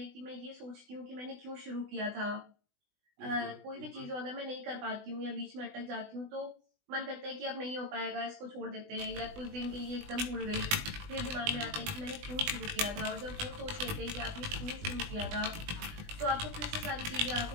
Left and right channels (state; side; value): late; left; 20 ms